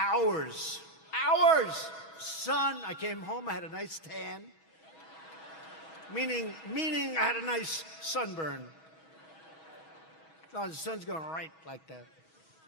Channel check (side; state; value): right; late; 6.2 ms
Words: Hours! Sun, I came home, I had a nice tan. Meaning I had a nice sunburn. Oh, the sun's going right like that.